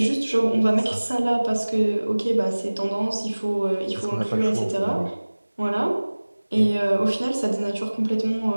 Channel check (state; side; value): inverted; both; correlation -1.00